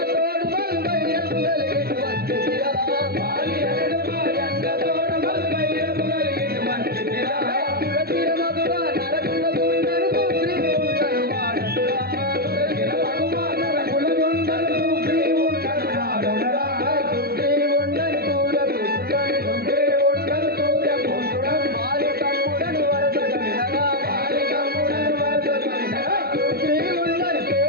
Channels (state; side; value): late; left; 0.45 ms